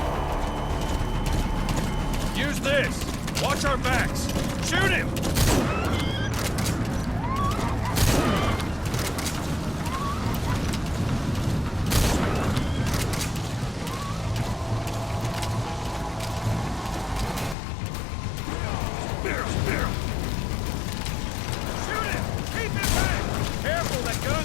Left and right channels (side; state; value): right; drops out; at 17.6 s